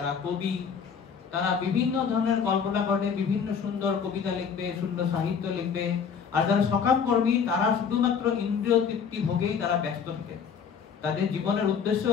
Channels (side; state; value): right; quieter; 6.6 dB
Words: কবি, তারা বিভিন্ন ধরনের কল্পনা করে, বিভিন্ন সুন্দর কবিতা লিখবে, সুন্দর সাহিত্য লিখবে। আর যারা সকাম কর্মী, তারা শুধুমাত্র ইন্দ্রিয় তৃপ্তি ভোগেই তারা ব্যস্ত থাকে, তাদের জীবনের উদ্দেশ্য